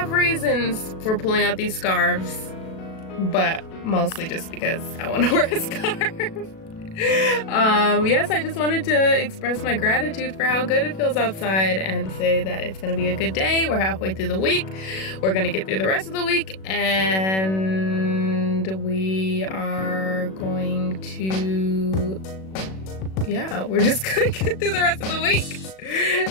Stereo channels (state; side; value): late; right; 37 ms